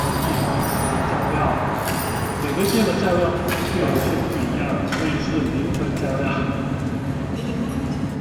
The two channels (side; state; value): both; identical; correlation 1.00